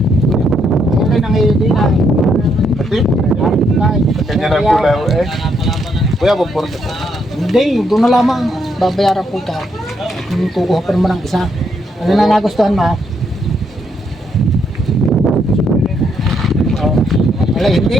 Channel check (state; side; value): normal; both; correlation 0.75